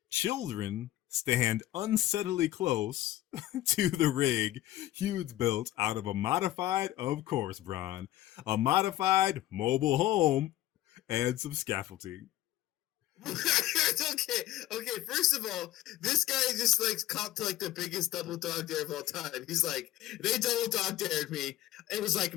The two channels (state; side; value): quieter; right; 14.7 dB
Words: Children stand unsettlingly close to the rig Hughes built out of a modified, of course, Bron, a modified mobile home and some scaffolding. okay. First of all, this guy just like copped to like the biggest double dog dare of all time. He's like, they double dog dared me. It was like